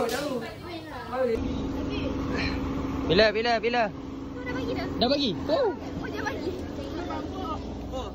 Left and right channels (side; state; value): both; identical; correlation 1.00